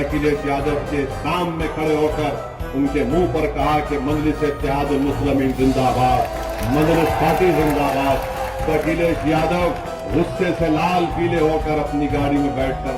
यादव के सामने खड़े होकर उनके मुंह पर कहा कि मजलिस-ए-इत्तेहादुल मुस्लिमीन जिंदाबाद, मजलिस पार्टी जिंदाबाद। तो अखिलेश यादव गुस्से से लाल पीले होकर अपनी गाड़ी में बैठकर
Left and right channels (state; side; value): identical; both; correlation 1.00